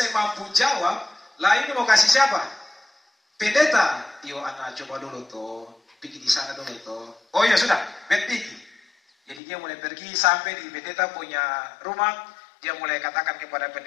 mampu jawab, lah ini mau kasih siapa? Pendeta. Yo anak coba dulu tuh, pergi di sana dulu tuh. Oh iya sudah, pergi. Jadi dia mulai pergi sampai di pendeta punya rumah. Dia mulai katakan kepada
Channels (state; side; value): drops out; right; at 9.4 s